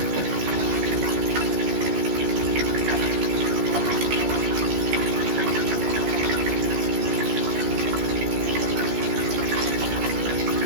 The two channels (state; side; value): late; left; 14 ms